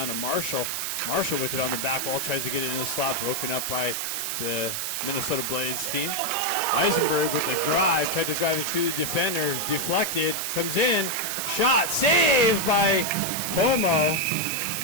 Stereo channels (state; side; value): noise; right; hiss, 2 dB below the sound